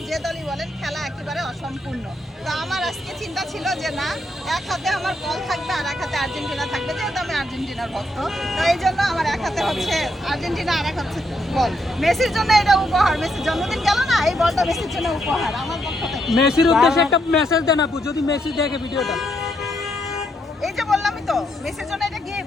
যে দলই বলেন, খেলা একেবারে অসম্পূর্ণ। তো আমার আজকে চিন্তা ছিল যে না, এক হাতে আমার বল থাকবে আর এক হাতে আর্জেন্টিনা থাকবে, যেহেতু আমি আর্জেন্টিনার ভক্ত। তো এই জন্য আমার এক হাতে হচ্ছে আর্জেন্টিনা আর এক হাতে বল। মেসির জন্য এটা উপহার, মেসির জন্মদিন গেল না, এই বলটা মেসির জন্য উপহার আমার পক্ষ থেকে। মেসির উদ্দেশ্যে একটা মেসেজ দেন আপু, যদি মেসি দেখে ভিডিওটা। এই যে বললামই তো, মেসির জন্য এটা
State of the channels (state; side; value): normal; both; correlation 0.77